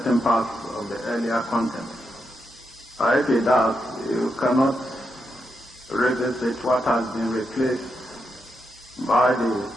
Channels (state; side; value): normal; both; correlation 0.84